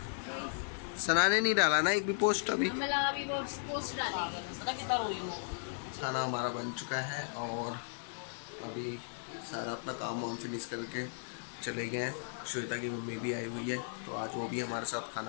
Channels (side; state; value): right; silent; 54 dB below the other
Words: सना ने नहीं डाला ना एक भी पोस्ट अभी। पोस्ट डाली सना कितना रोई हो। खाना हमारा बन चुका है और अभी सारा अपना काम वाम फिनिश करके चले गए हैं। श्वेता की मम्मी भी आई हुई है तो आज वो भी हमारे साथ